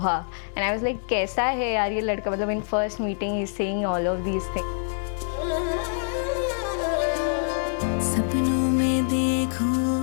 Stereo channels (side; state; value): right; silent; digital silence